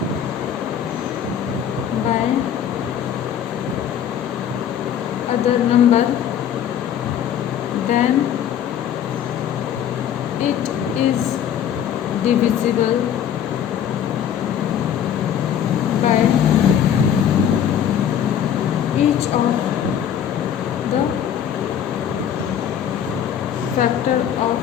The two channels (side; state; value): right; quieter; 9.3 dB